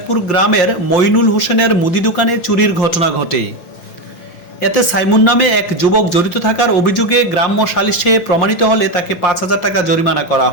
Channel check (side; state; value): right; late; 5.7 ms